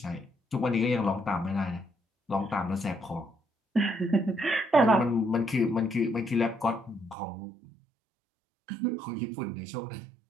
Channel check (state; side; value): drops out; left; at 7.2 s